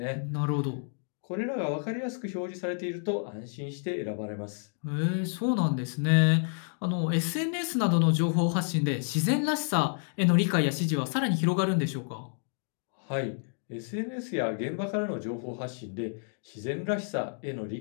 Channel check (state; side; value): silent; right; 58 dB below the other